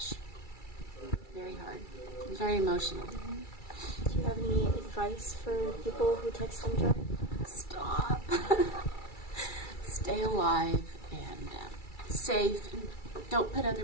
Very hard. Very emotional. Do you have any advice for people who text and drive? Stop. Stay alive and safe. And don't put other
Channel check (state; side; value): late; right; 2.3 ms